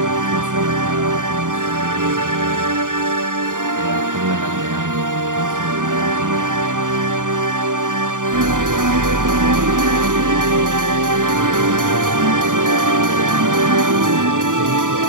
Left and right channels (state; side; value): late; left; 0.88 ms